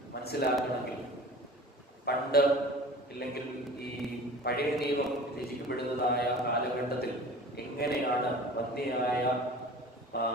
മനസ്സിലാക്കണമെങ്കിൽ പണ്ട് ഇല്ലെങ്കിൽ ഈ പഴയ നിയമം രചിക്കപ്പെടുന്നതായ കാലഘട്ടത്തിൽ എങ്ങനെയാണ് വന്ധ്യയായ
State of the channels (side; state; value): both; normal; correlation 0.40